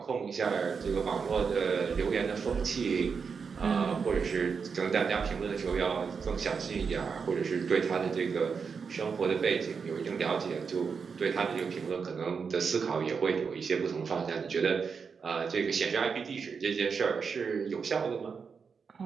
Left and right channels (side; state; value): left; quieter; 5.7 dB